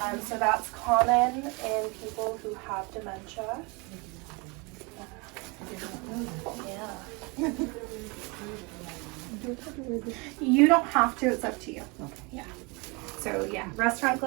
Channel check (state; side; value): quieter; left; 28.8 dB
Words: So that's common in people who have dementia. Yeah. You don't have to, it's up to you. Okay. Yeah. So yeah, restaurant